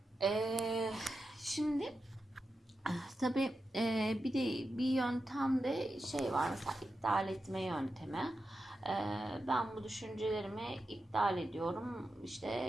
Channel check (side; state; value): both; normal; correlation 0.89